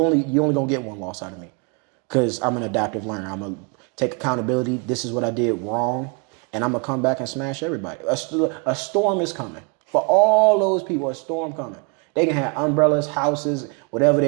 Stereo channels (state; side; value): quieter; left; 34.2 dB